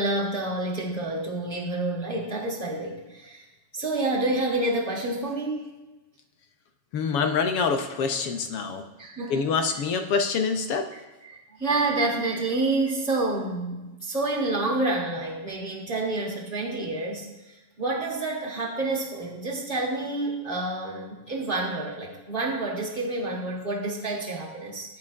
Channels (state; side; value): late; right; 7.2 ms